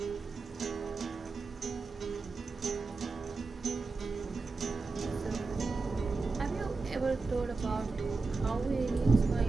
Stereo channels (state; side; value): quieter; left; 4.0 dB